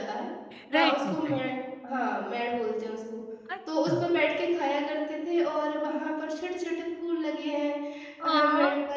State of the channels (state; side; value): identical; both; correlation 1.00